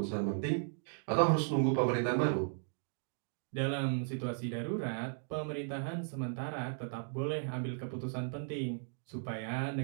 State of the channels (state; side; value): silent; left; digital silence